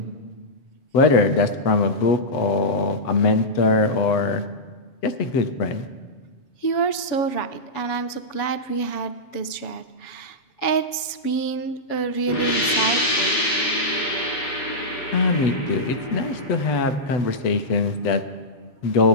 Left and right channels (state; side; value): late; right; 7.1 ms